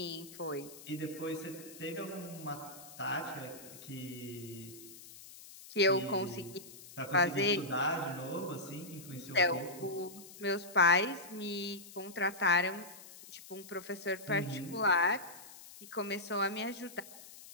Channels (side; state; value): left; noise; hiss, 17 dB below the sound